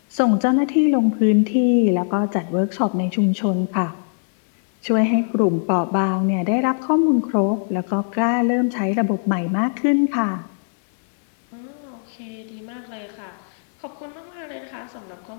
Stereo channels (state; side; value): silent; right; 59 dB below the other